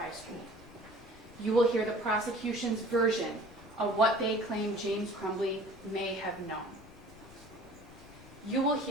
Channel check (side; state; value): left; noise; rumble, 20 dB below the sound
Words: School. You will hear the prosecution's version of what they claim James Crumbley may have known. You will